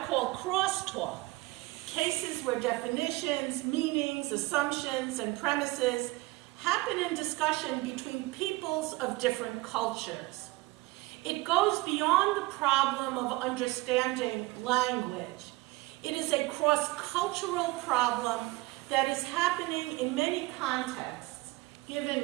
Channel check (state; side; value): quieter; left; 21.5 dB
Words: call crosstalk, cases where definitions, meanings, assumptions, and premises happen in discussion between peoples of different cultures. It goes beyond the problem of understanding language. It is a cross-cultural problem that is happening in many contexts,